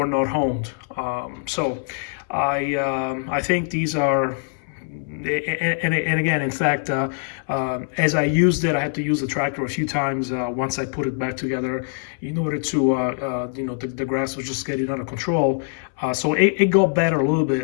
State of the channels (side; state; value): right; silent; 63 dB below the other